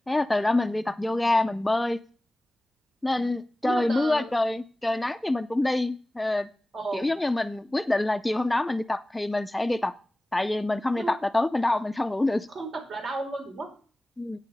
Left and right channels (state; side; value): normal; both; correlation 0.97